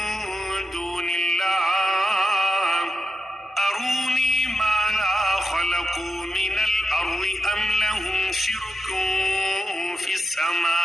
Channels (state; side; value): normal; both; correlation 0.87